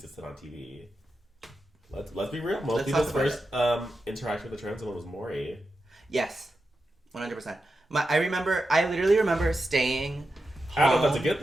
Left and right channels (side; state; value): both; normal; correlation 0.90